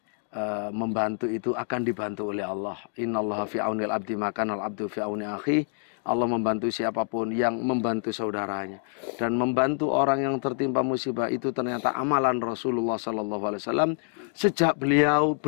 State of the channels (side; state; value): right; silent; 57 dB below the other